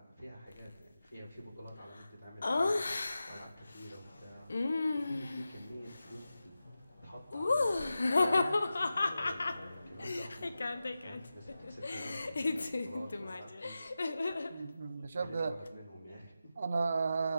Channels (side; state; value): both; inverted; correlation -0.92